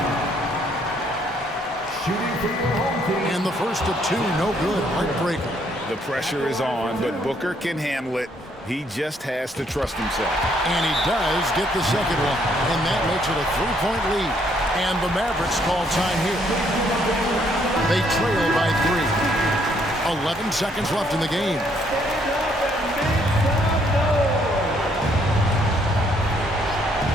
Shooting for your home team. And the first of 2, no good. Heartbreaker. The pressure is on, but Booker can handle it. He just has to trust himself. And he does get the second one. And that makes it a 3-point lead. And the Mavericks call time here. They trail by 3. 11 seconds left in the game.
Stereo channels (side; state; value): both; normal; correlation 0.69